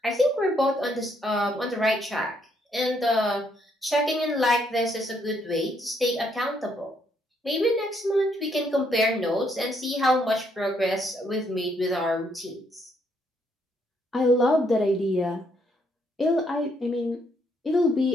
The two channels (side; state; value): both; normal; correlation 0.72